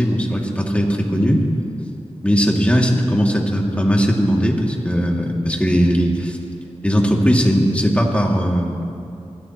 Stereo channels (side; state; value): both; normal; correlation 0.93